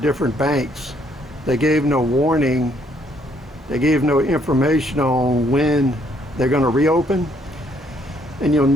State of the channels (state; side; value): normal; both; correlation 0.68